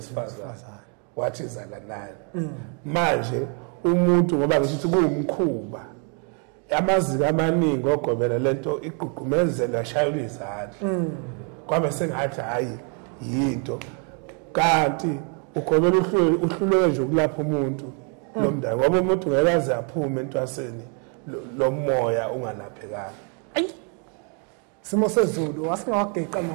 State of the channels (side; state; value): left; quieter; 39.6 dB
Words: wathi zalanani manje umuntu ngoba ngithi kuwumkhuba amaziko amaningi ogobela lento igqugqumezela yashayula izandla kwabe sengathi hayi yinto kanti ugobela uhluleke nje ukulapha umuntu lomndane ngoba umuntu ngeke aze aphume entwaseni lomoya ungalaphekanga simo sezulu wasingawageqa